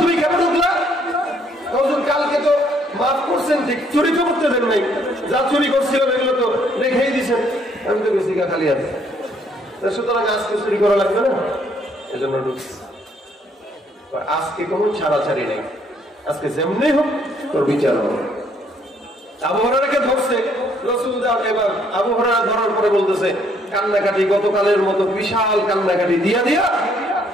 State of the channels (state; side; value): normal; both; correlation 0.66